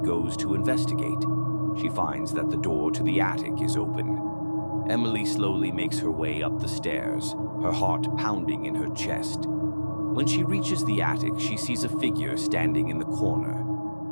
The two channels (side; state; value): both; inverted; correlation -1.00